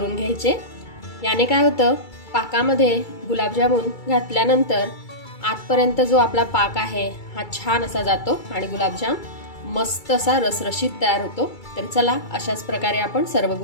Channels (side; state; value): right; late; 2.3 ms